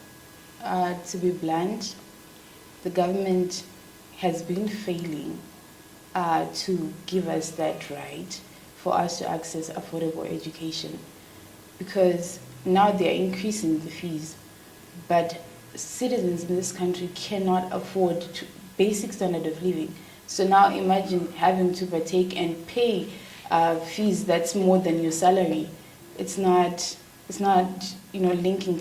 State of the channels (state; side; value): identical; both; correlation 1.00